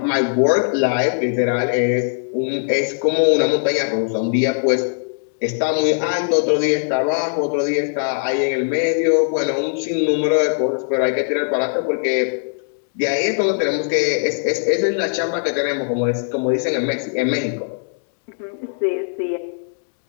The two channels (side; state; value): right; silent; digital silence